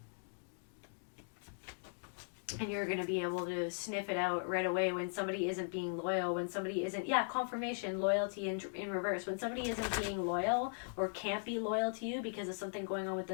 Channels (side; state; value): right; silent; digital silence